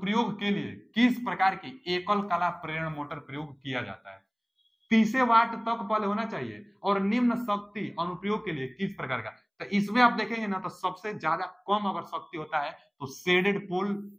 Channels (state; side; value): identical; both; correlation 1.00